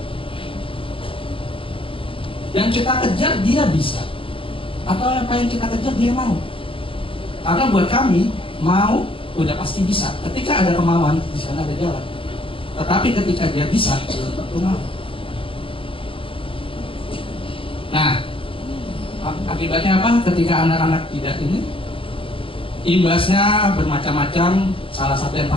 Yang kita kejar dia bisa, atau apa yang kita kejar dia mau? Karena buat kami, mau udah pasti bisa. Ketika ada kemauan, di sana ada jalan. Tetapi ketika dia bisa, belum tentu mau. Nah, akibatnya apa? Ketika anak-anak tidak ini, imbasnya bermacam-macam. Salah satu yang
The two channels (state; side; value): late; right; 0.26 ms